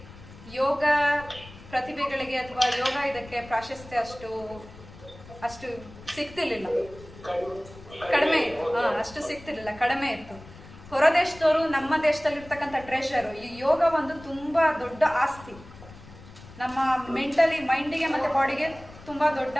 ಯೋಗ ಪ್ರತಿಭೆಗಳಿಗೆ ಅಥವಾ ಯೋಗ ಇದಕ್ಕೆ ಪ್ರಾಶಸ್ತ್ಯ ಅಷ್ಟು ಸಿಗ್ತಿರ್ಲಿಲ್ಲ, ಕಡಿಮೆ ಇತ್ತು. ಅಷ್ಟು ಸಿಗ್ತಿರ್ಲಿಲ್ಲ, ಕಡಿಮೆ ಇತ್ತು. ಹೊರ ದೇಶದವರು ನಮ್ಮ ದೇಶದಲ್ಲಿರ್ತಕ್ಕಂಥ ಟ್ರೆಷರು. ಈ ಯೋಗ ಒಂದು ತುಂಬಾ ದೊಡ್ಡ ಆಸ್ತಿ, ನಮ್ಮ ಮೆಂಟಲಿ ಮೈಂಡಿಗೆ ಮತ್ತೆ ಬಾಡಿಗೆ ತುಂಬಾ ದೊಡ್ಡ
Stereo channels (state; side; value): noise; left; rumble, 19 dB below the sound